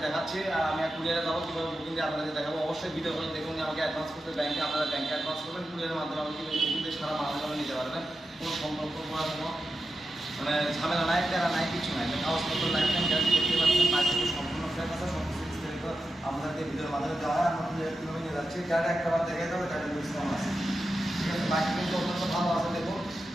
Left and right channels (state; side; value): normal; both; correlation 0.90